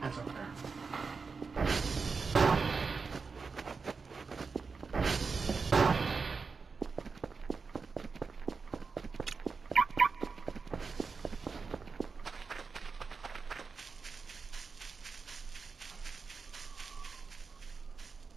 That's up there.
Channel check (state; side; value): quieter; left; 4.8 dB